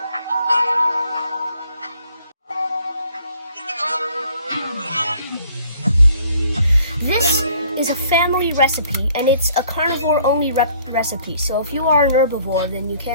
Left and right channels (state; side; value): inverted; both; correlation -0.59